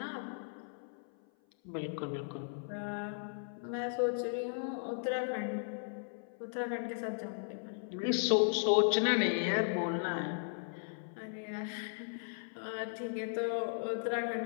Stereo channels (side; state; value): right; silent; 53 dB below the other